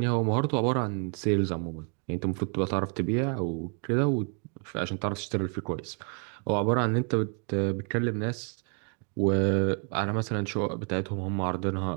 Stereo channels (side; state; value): left; quieter; 39.2 dB